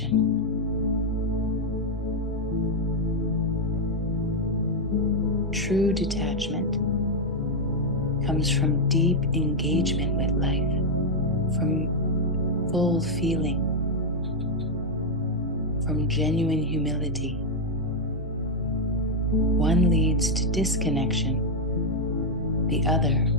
True detachment comes from deep engagement with life, from full feeling, from genuine humility. One leads to disconnection, the other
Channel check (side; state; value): both; normal; correlation 0.01